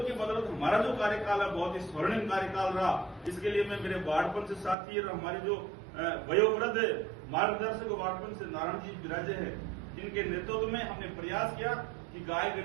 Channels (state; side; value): drops out; left; at 4.8 s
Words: की बदौलत हमारा जो कार्यकाल है बहुत ही स्वर्णिम कार्यकाल रहा। इसके लिए मैं मेरे वार्ड पंच साथी और हमारे जो वयोवृद्ध मार्गदर्शक वार्ड पंच नारायण जी विराजे हैं, इनके नेतृत्व में हमने प्रयास किया कि गाय